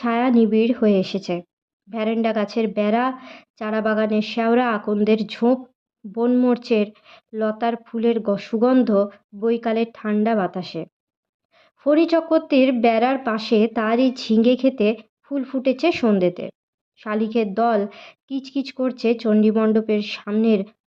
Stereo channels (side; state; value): both; identical; correlation 1.00